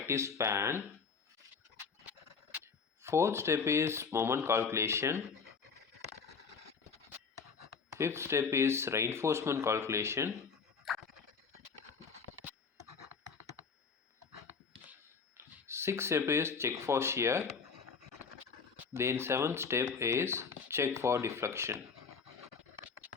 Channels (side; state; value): right; quieter; 5.5 dB